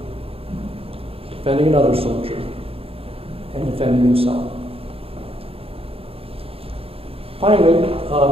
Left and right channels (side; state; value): left; late; 0.28 ms